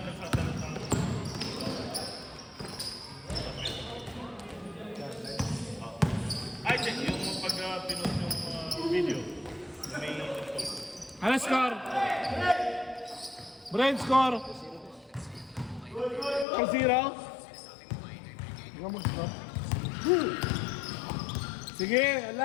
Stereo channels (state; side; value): drops out; right; at 16.4 s